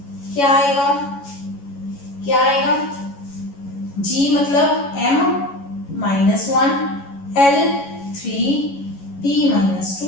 क्या आएगा, क्या आएगा, G मतलब M-1, L 3,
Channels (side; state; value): right; late; 11 ms